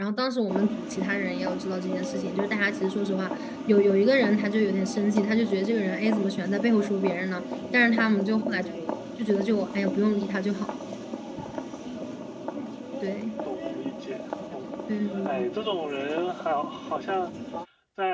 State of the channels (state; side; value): identical; both; correlation 1.00